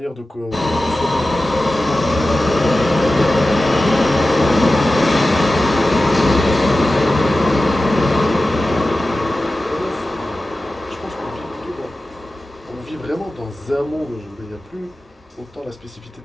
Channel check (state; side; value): normal; both; correlation 0.95